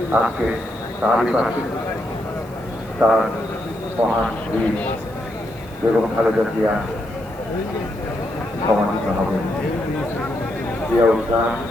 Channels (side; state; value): right; noise; hiss, 25 dB below the sound